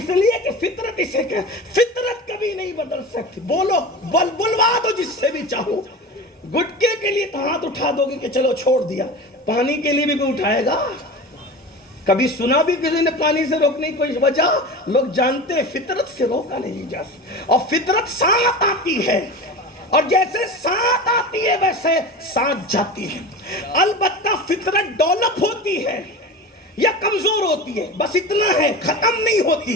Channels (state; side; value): normal; both; correlation 0.30